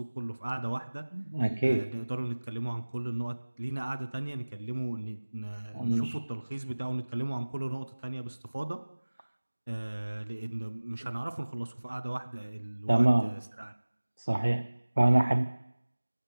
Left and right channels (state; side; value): inverted; both; correlation -1.00